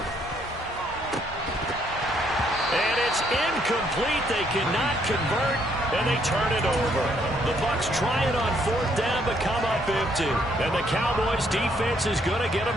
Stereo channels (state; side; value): normal; both; correlation 0.69